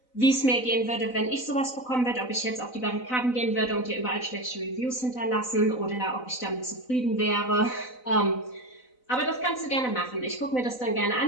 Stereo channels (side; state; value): right; late; 4.0 ms